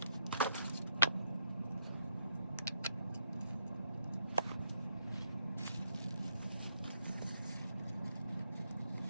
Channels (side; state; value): both; inverted; correlation -0.76